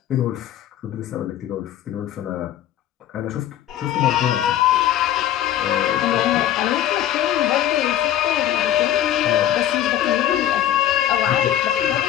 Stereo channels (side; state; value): right; quieter; 11.8 dB